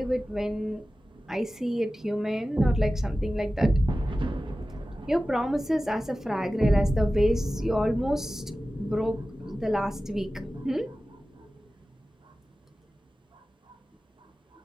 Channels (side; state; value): both; normal; correlation 0.95